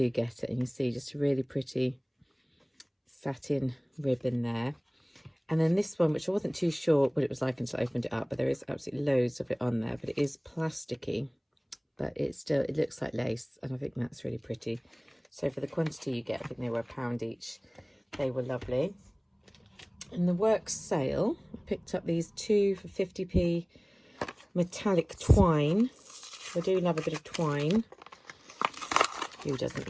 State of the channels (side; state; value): both; identical; correlation 1.00